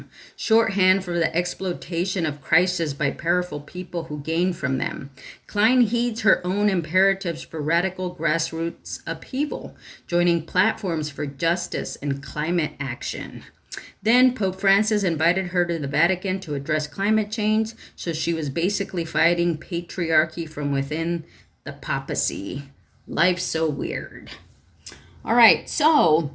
shorthand for the exploitation of crises by powerful people who gain from them. Klein heeds her own imperatives for radical grassroots upheaval, joining platforms for justice and climate action. Then Pope Francis invited her to the Vatican to address climate change, so she was basically fighting patriarchy from within the papacy. Life's so weird. All right,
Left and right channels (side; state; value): both; identical; correlation 1.00